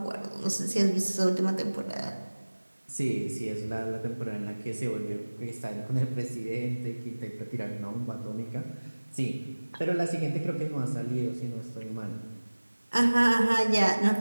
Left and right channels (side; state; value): both; inverted; correlation -1.00